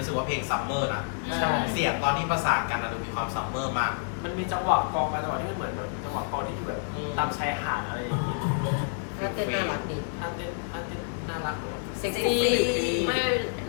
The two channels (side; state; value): right; silent; 59 dB below the other